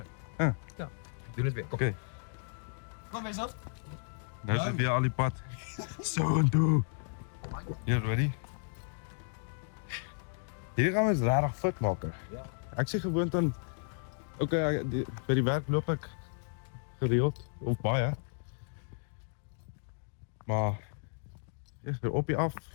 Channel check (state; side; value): silent; right; digital silence